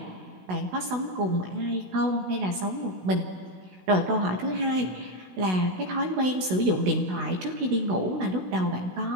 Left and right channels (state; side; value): late; left; 16 ms